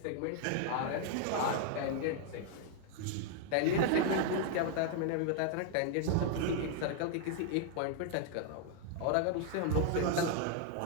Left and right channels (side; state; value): both; different; correlation 0.00